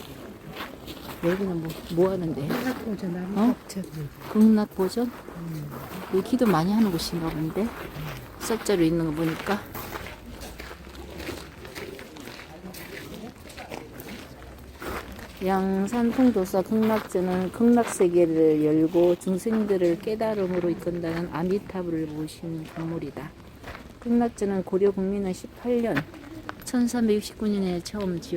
여기는 뭐 하는데? 한학보전 남학전. 극락보전? 여기 기도 많이 하는 곳인가 본데 석자로 있는 거 보니까. 양산통도사 극락전은 극락세계를 열고 중생들을 깨달음으로 이끈다는 아미타불을 모신 건물이다. 극락전은 고려 국민은 18년 1369년에 처음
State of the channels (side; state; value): both; identical; correlation 1.00